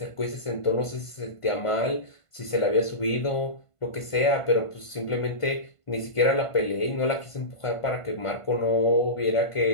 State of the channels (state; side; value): late; right; 1.5 ms